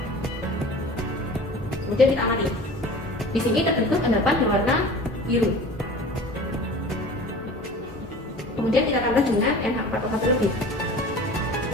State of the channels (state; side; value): normal; both; correlation 0.40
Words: Kemudian kita amati. Di sini terbentuk endapan berwarna biru. Kemudian kita tambah dengan NH4OH terlebih.